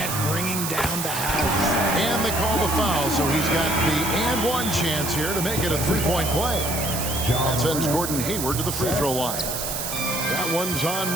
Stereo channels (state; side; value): noise; right; hiss, 4 dB below the sound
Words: bringing down the house. And they call the foul, so he's got the and one chance here to make it a 3-point play. That sends Gordon Hayward to the free throw line. That one's on